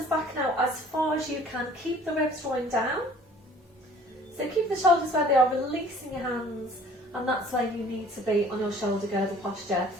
back now as far as you can. Keep the ribs drawing down. So keep the shoulders where they are, releasing your hands, and that's where you need to be on your shoulder girdle posture.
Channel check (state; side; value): normal; both; correlation 0.52